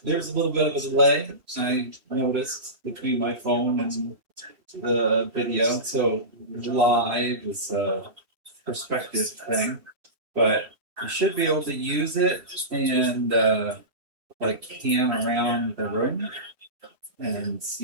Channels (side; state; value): left; late; 2.9 ms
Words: There's a little bit of a delay, I noticed, between my phone and the video. So live is a perspective thing, but you should be able to use it and like pan around the room and